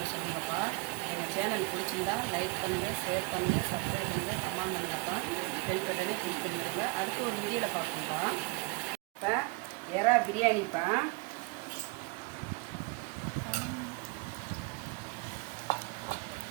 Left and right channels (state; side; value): quieter; left; 28.6 dB